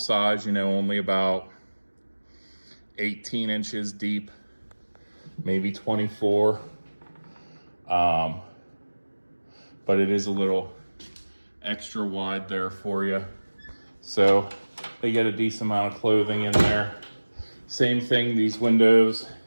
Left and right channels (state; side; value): inverted; both; correlation -1.00